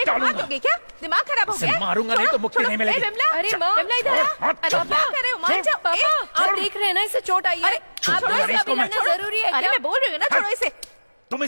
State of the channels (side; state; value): both; inverted; correlation -1.00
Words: को डालूंगा। मार दोगे क्या? दिमाग खराब हो इसे गया? मारूंगा नहीं तो मुक्ति छोड़ो, नहीं मिलेगी। ए, बिमला, अरे माँ, बिमला इधर आ। हाथ अरे छोड़। क्या कर रहे हो? मान जाओ। पापा, ए, आप देख रहे हैं ना, इसे चोट आई है। अरे, आप छोड़ो तो ना इसे इसको, अभी मैं लड़ना जरूरी है अरे क्या? मैं बोल रही हूँ ना, छोड़ो इसे। तुम